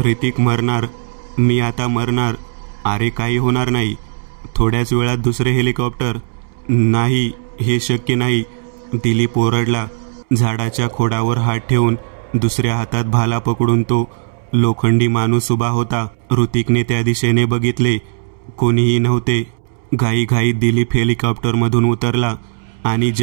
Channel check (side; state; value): left; silent; 68 dB below the other